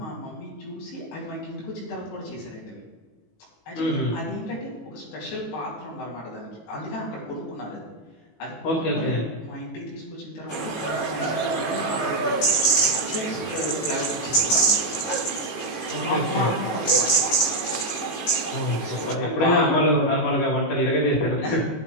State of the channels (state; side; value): late; right; 18 ms